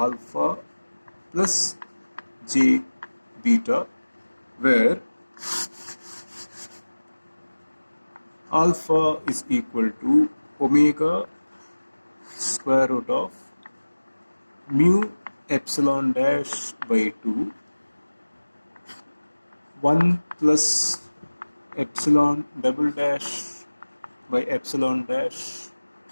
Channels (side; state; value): both; inverted; correlation -1.00